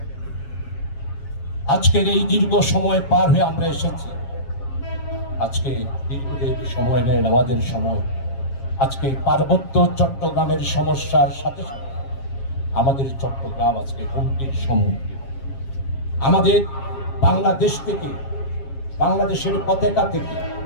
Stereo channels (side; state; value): right; late; 7.4 ms